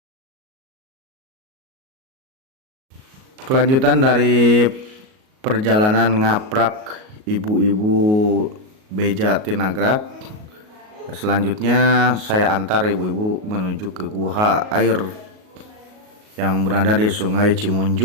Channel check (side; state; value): left; late; 38 ms